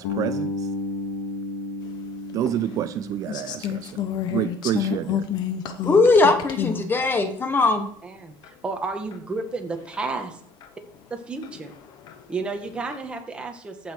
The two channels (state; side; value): normal; both; correlation 0.55